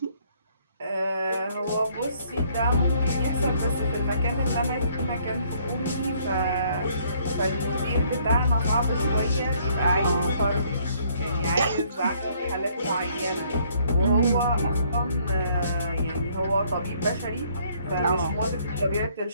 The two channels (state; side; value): inverted; both; correlation -0.65